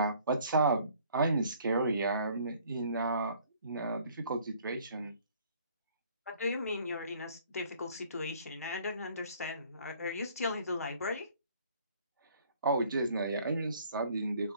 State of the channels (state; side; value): inverted; both; correlation -0.57